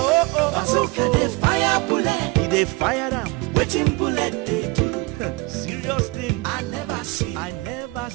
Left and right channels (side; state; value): left; quieter; 24.9 dB